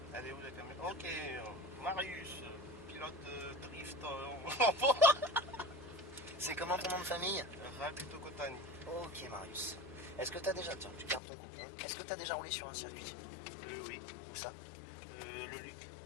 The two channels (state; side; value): drops out; right; at 11.2 s